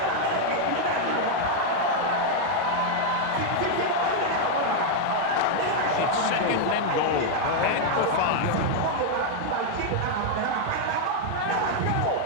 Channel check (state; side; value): different; both; correlation 0.00